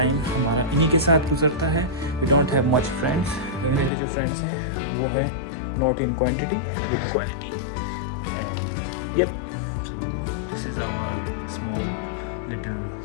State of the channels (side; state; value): right; drops out; at 3.9 s